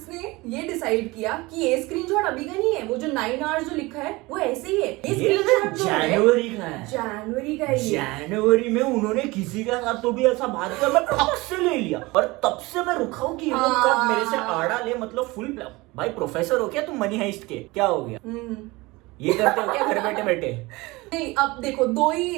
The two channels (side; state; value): left; quieter; 22.3 dB